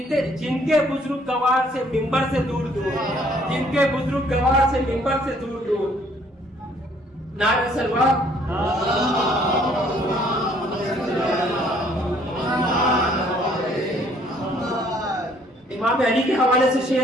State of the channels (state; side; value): normal; both; correlation 0.62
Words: کے بزرگ گوار سے منبر سے دور دور، جن کے بزرگ گوار سے منبر سے دور دور۔ نعرہ سلوات۔ امام علی کے حوالے سے